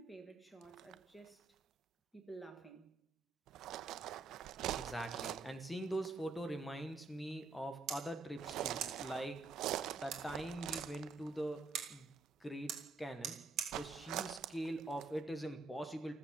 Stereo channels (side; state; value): left; quieter; 3.9 dB